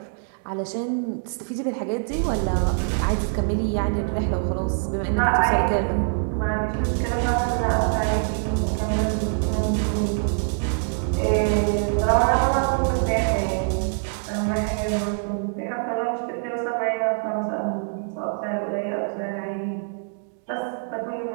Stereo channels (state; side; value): silent; left; digital silence